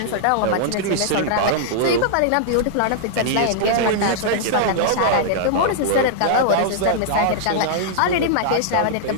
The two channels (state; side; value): different; both; correlation -0.01